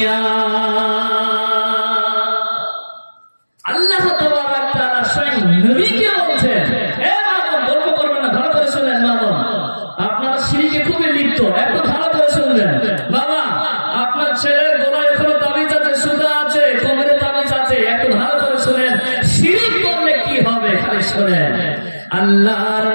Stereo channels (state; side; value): inverted; both; correlation -1.00